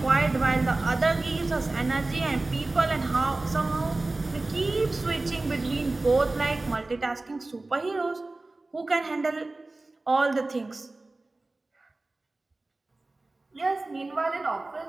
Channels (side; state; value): left; quieter; 3.1 dB